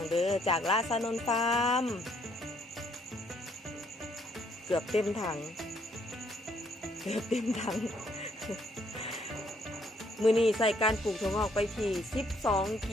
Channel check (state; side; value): normal; both; correlation 0.68